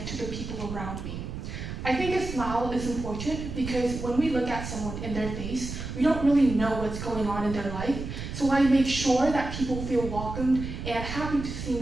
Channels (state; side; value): noise; right; rumble, 7 dB below the sound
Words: to the people around me. I think a smile is important because when we look at someone in their face, we don't really know what's going on in their life. So I make sure that people feel welcomed and happy to see